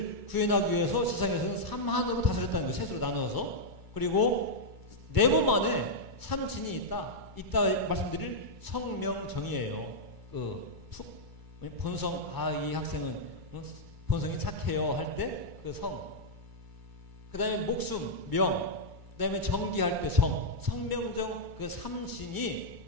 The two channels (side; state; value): left; late; 2.3 ms